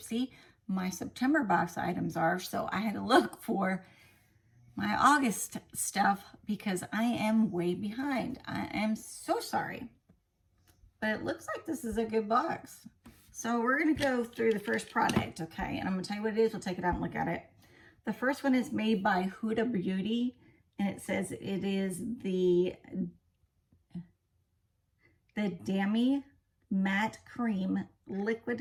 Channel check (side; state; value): both; identical; correlation 1.00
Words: My September box items are, so I had to look for my August stuff because I am way behind. I am so sorry, but it looks like this is a good box. So we're gonna go through the first product, okay? And I'm gonna tell you what it is. We'll take it out and look at it. The first one is made by Huda Beauty, and it says it is the Dami Matte Cream